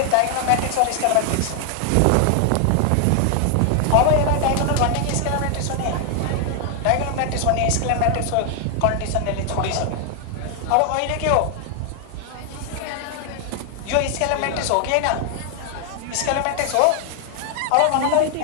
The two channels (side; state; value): both; different; correlation 0.00